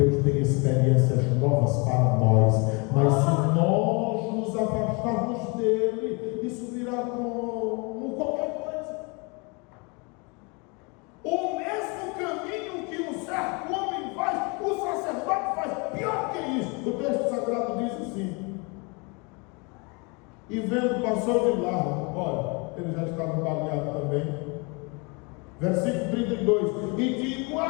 tem experiências novas para nós. Mas se nós nos afastarmos dele, isso virá como qualquer coisa. O mesmo caminho que um certo homem faz, o sacerdote faz. Pior que isso, o texto sagrado diz assim: e vendo, passou de largo. Olha, ele já estava baleado também. Versículo 32: e de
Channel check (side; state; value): right; quieter; 30.7 dB